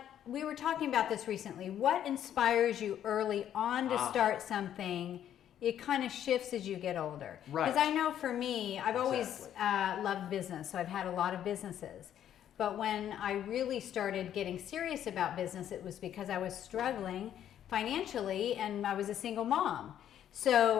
we were talking about this recently. What inspires you early on to start something? It kind of shifts as you get older. Right. Because I know for me, I've always loved business, so I've had a lot of businesses. But when I really started getting serious about business, it was because I was struggling financially and I was a single mom.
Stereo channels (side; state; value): right; quieter; 10.5 dB